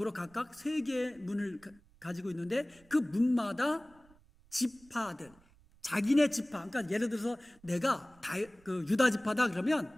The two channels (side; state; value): right; noise; rumble, 28 dB below the sound